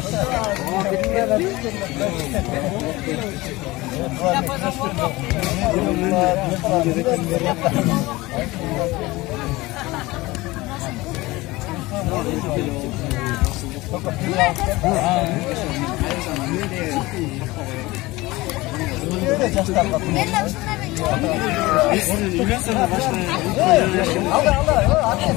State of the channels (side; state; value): right; quieter; 20.6 dB